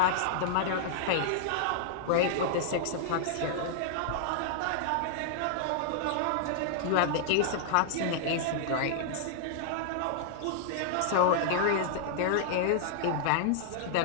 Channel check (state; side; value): different; both; correlation -0.01